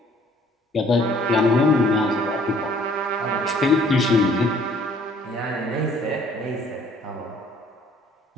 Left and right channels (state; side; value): normal; both; correlation 0.58